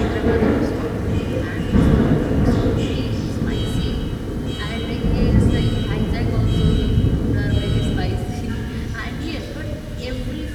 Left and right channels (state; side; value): identical; both; correlation 1.00